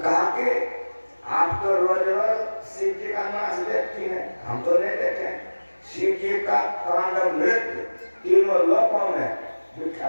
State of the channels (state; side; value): inverted; both; correlation -1.00